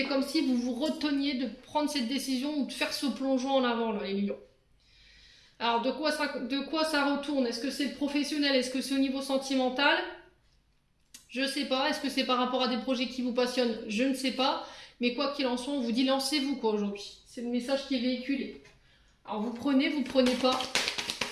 comme si vous vous reteniez de prendre cette décision ou de faire ce plongeon en avant, là, les lions. Alors, de quoi ça retourne? Est-ce que c'est professionnel? Est-ce que c'est au niveau sentimental? Je sais pas. Est-ce que c'est par rapport à des projets qui vous passionnent? Je ne sais pas. Mais quoi qu'il en soit, on vous dit lancez-vous quoi aujourd'hui. C'est le message qui est véhiculé. Alors, vous prenez pas.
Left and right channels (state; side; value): identical; both; correlation 1.00